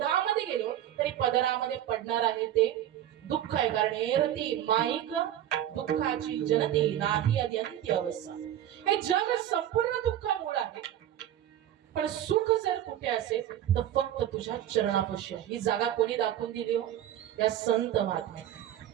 गेलो तरी पदरामध्ये पडणार आहे ते दुःख आहे. कारण एरती माईक दुःखाची जनती नाही अद्यंती अवस्था. हे जग संपूर्ण दुःखामुळे आहे, पण सुख जर कुठे असेल तर फक्त तुझ्या चरणापाशी आहे. ही जागा कोणी दाखवून दिली हो? या संत महात्म्या.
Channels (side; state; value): left; quieter; 11.6 dB